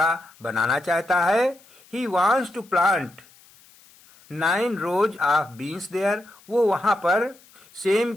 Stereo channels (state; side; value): noise; left; hiss, 27 dB below the sound